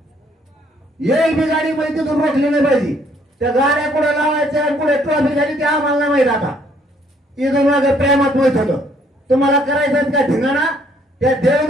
एक बी गाडी मध्ये तिथून रोखली नाही पाहिजे. त्या गाड्या कुठे लावायच्या कुठे ट्रॉफिक झाली ते आम्हाला नाही माहित. आता इथून मागे प्रेमात माहित होतं. तुम्हाला करायचं का धिंगाणा त्या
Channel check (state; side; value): normal; both; correlation 0.65